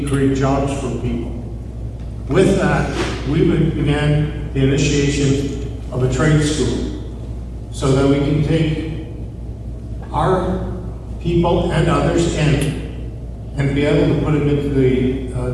to create jobs for people. With that, we began the initiation of a trade school so that we can take our people and others in and be able to put them into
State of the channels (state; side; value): identical; both; correlation 1.00